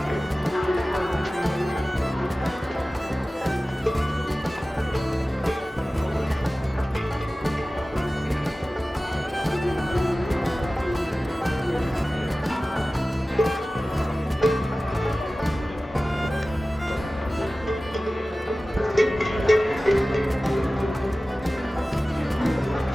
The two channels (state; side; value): normal; both; correlation 0.97